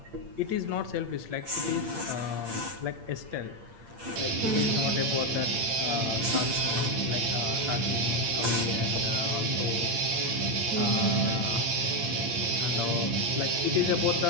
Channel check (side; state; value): left; late; 8.7 ms